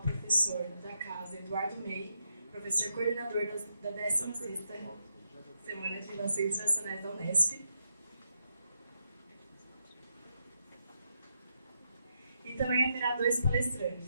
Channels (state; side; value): inverted; both; correlation -0.83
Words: professor da casa, Eduardo May, professor coordenador da 16ª Semana de Relações Internacionais da Unesp. E também haverá 2